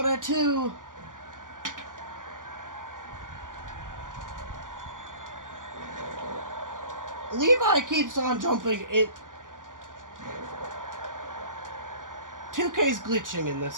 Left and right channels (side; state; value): left; late; 0.88 ms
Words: at 2. Levi keeps on jumping it. 2K's glitching in